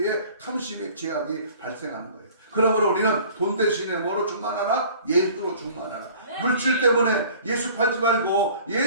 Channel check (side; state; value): both; inverted; correlation -0.49